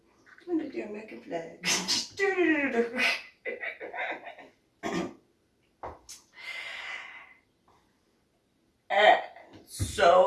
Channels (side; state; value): both; identical; correlation 1.00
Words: I'm gonna do American flag. And